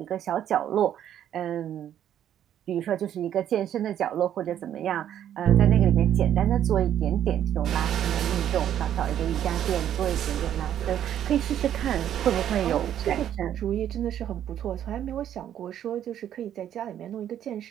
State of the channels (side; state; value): left; quieter; 10.5 dB